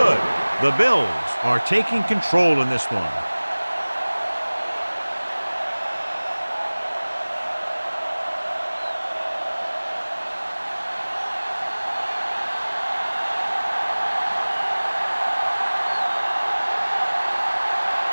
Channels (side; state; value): both; inverted; correlation -1.00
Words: The Bills are taking control in this one.